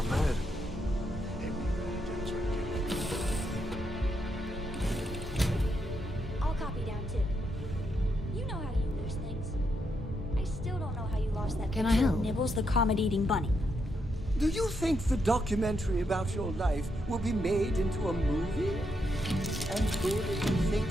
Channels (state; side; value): normal; both; correlation 0.80